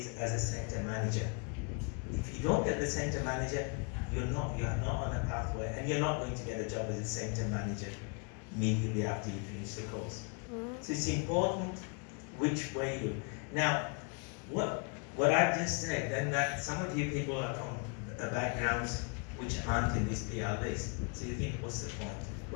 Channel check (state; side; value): quieter; right; 36.9 dB